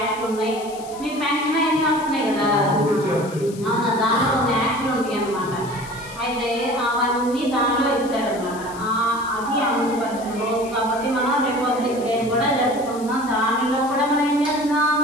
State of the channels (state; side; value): noise; left; hiss, 18 dB below the sound